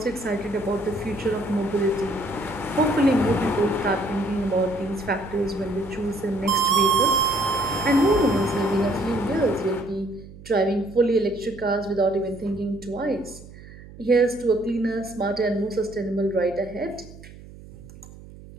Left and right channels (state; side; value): noise; right; hum, 18 dB below the sound